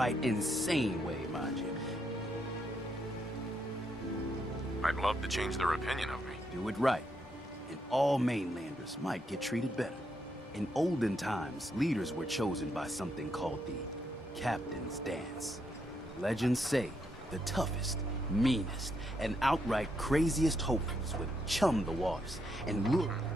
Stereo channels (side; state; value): both; normal; correlation 0.78